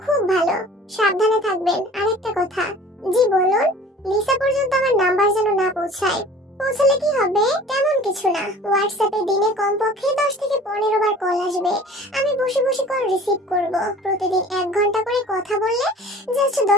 খুব ভালো। সাবধানে থাকবেন। আরেকটা কথা। জি বলুন। লিসা পর্যন্ত আমার নাম্বার যেন না পৌঁছায়। পৌঁছালে কি হবে? তেমন কিছু না। হোয়াটসঅ্যাপে দিনে কমপক্ষে 10 থেকে 15 বার কল আসবে। আমি বসে বসে কল রিসিভ করব। প্রতিদিন 1 ঘন্টা করে কথা বললে জাস্ট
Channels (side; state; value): both; normal; correlation 0.46